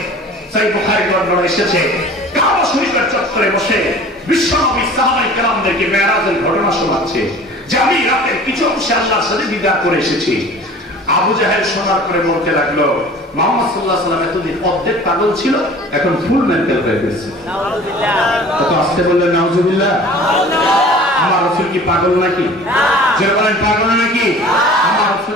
সহিহ বুখারীর বর্ণনা এসেছে, কাবা শরীফের চত্বরে বসে বিশ্বনবী সাহাবায়ে কেরামদেরকে মেরাজের ঘটনা শোনাচ্ছে যে আমি রাতের কিছু অংশে আল্লাহর সাথে দিদার করে এসেছি। আবু জাহেল শোনার পরে বলতে লাগলো, মুহাম্মদ সাল্লাল্লাহু আলাইহি ওয়াসাল্লাম এতদিন অর্ধেক পাগল ছিল, এখন ফুল মেন্টাল হয়ে গেছে। নাউযুবিল্লাহ। কত আসতে বললেন নাউযুবিল্লাহ। আমার রাসূল কি পাগল নাকি? যারা বলেন পাগল নাকি? আমার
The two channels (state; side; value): normal; both; correlation 0.44